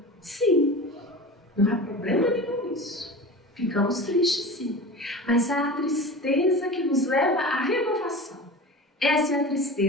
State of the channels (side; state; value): both; normal; correlation 0.33